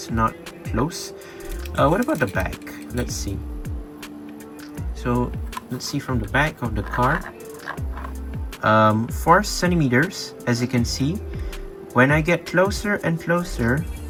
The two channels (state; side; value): identical; both; correlation 1.00